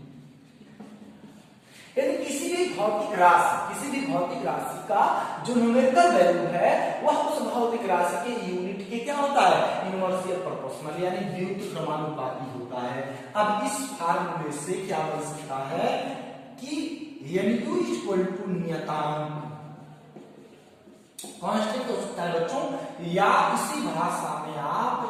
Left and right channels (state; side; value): identical; both; correlation 1.00